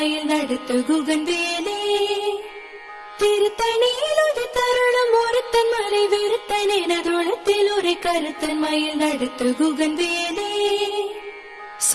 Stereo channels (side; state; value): both; identical; correlation 1.00